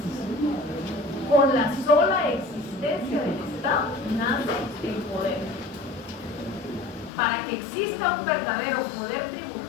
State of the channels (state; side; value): drops out; right; at 7.1 s